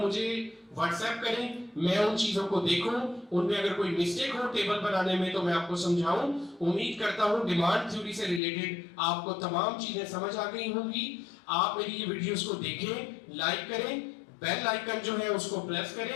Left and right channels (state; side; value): drops out; right; at 8.4 s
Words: व्हाट्सएप करें, मैं उन चीजों को देखूं, उनमें अगर कोई मिस्टेक हो टेबल बनाने में तो मैं आपको समझाऊं। उम्मीद करता हूं डिमांड थ्योरी से रिलेटेड आपको तमाम चीजें समझ आ गई होंगी। आप मेरी ये वीडियोस को देखें, लाइक करें, बेल आइकन जो है उसको प्रेस